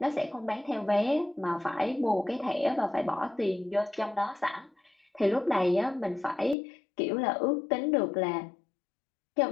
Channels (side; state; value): right; drops out; at 6.6 s